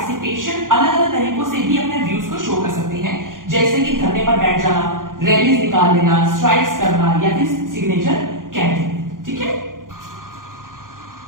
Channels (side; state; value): left; late; 0.90 ms